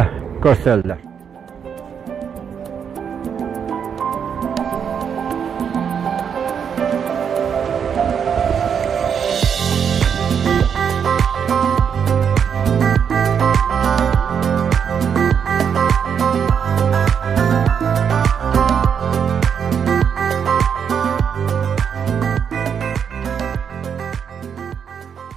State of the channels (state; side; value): quieter; left; 7.4 dB